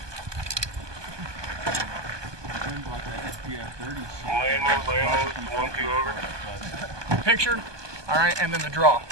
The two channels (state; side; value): late; left; 1.2 ms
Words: Picture, all right, and then the draw